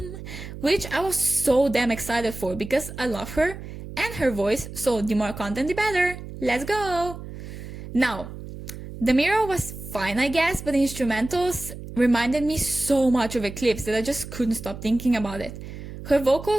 which I was so damn excited for because I love her and her voice, so the more content the better. Let's go! Now, the mirror was fine I guess, but the instrumentals reminded me so much of Eclipse that I just couldn't stop thinking about it. Her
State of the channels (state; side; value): noise; right; hum, 11 dB below the sound